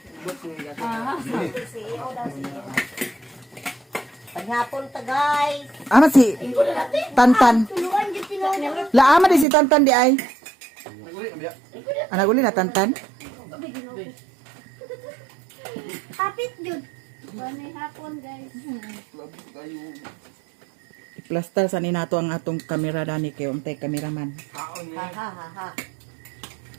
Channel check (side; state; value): left; drops out; at 9.5 s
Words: Paghapon ta guys. Ama si Tantan. Tuluan dyan tinood. Laama di si Tantan di ay. Naguli na biya. Anak uli na Tantan. Kapit dyan. Banay hapon, guys. Plaster sa ninato ang atong kamera dani kay untay kameraman. Ha.